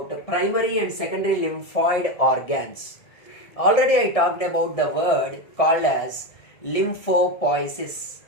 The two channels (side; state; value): right; late; 1.6 ms